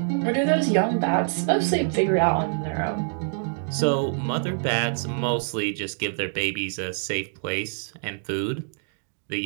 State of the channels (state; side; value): silent; left; digital silence